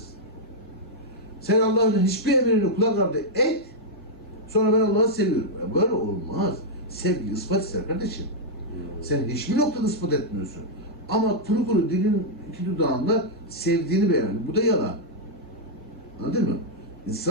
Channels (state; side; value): normal; both; correlation -0.04